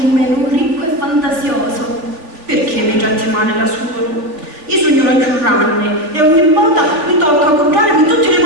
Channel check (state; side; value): late; left; 3.3 ms